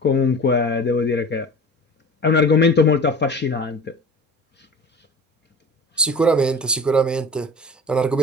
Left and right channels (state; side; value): normal; both; correlation 0.39